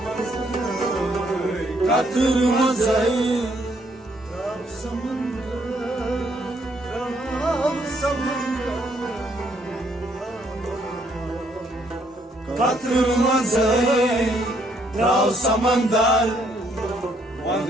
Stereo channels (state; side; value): normal; both; correlation 0.69